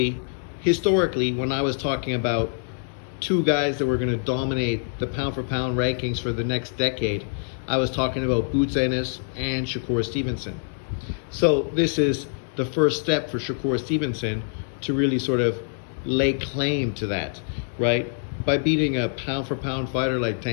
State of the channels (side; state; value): right; silent; digital silence